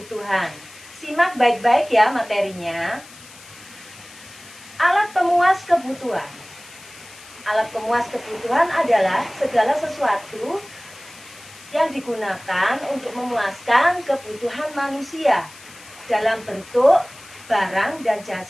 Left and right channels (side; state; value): left; noise; hiss, 20 dB below the sound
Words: Simak baik-baik ya materinya. Alat pemuas kebutuhan. Alat pemuas kebutuhan adalah segala sesuatu yang digunakan untuk memuaskan kebutuhan manusia dalam bentuk barang dan